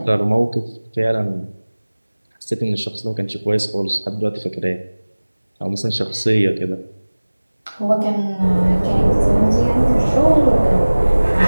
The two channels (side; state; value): both; inverted; correlation -1.00